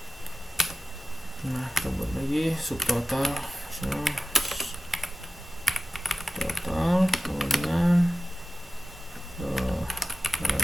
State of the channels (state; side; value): normal; both; correlation 0.93